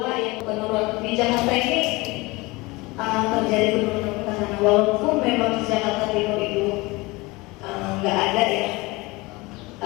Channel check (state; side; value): quieter; right; 23.2 dB